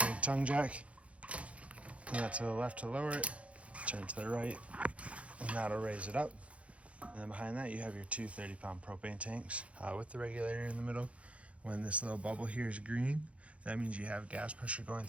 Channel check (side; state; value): left; late; 0.063 ms